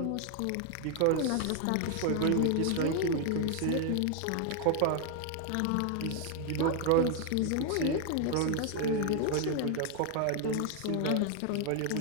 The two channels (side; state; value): both; different; correlation 0.00